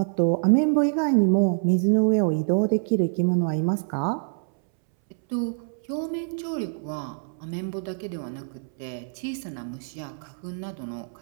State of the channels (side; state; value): left; silent; 61 dB below the other